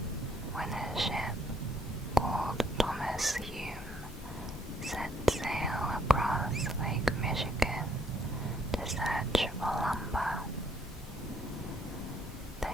when a ship called Thomas Hume set sail across Lake Michigan to search for lumber. The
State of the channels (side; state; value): both; normal; correlation 0.68